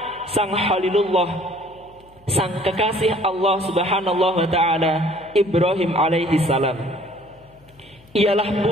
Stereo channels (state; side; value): noise; left; hum, 28 dB below the sound